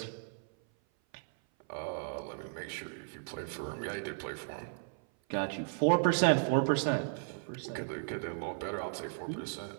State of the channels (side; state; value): left; silent; 54 dB below the other